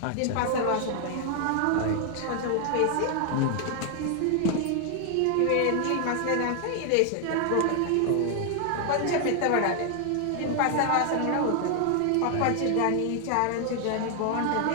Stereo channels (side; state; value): both; different; correlation 0.00